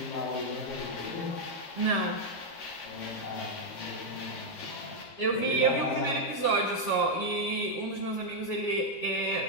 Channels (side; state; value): right; late; 12 ms